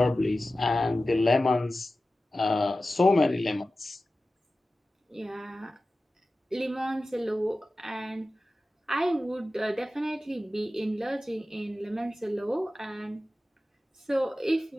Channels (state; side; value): normal; both; correlation 0.95